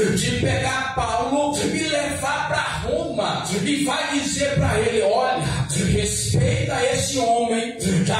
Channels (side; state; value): both; identical; correlation 1.00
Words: pegar Paulo e levar para Roma, e vai dizer para ele: olha, respeita esse homem,